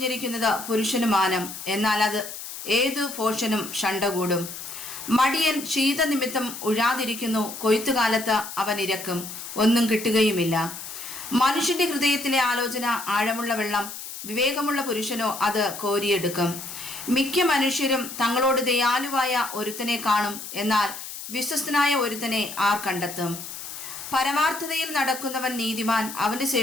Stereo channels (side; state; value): left; noise; hiss, 10 dB below the sound